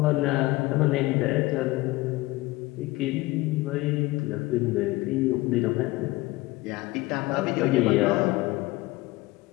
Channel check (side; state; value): right; quieter; 20.2 dB